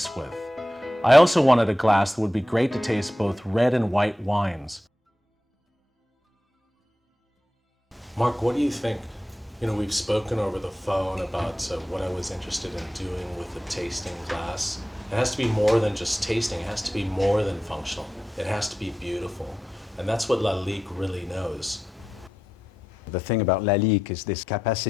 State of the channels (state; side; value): normal; both; correlation 0.90